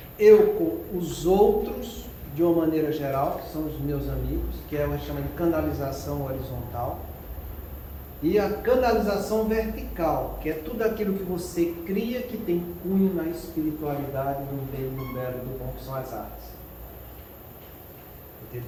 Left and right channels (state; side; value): identical; both; correlation 1.00